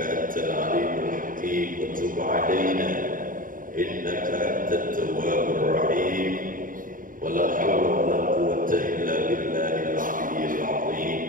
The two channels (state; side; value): late; left; 0.39 ms